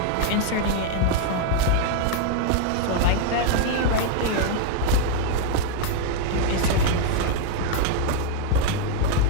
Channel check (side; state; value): both; different; correlation 0.00